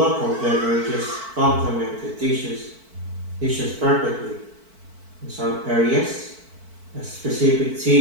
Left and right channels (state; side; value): late; left; 4.5 ms